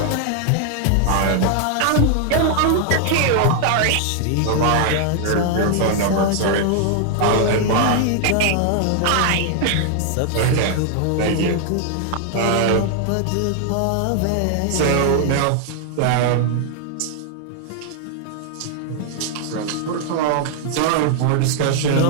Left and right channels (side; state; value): both; different; correlation 0.00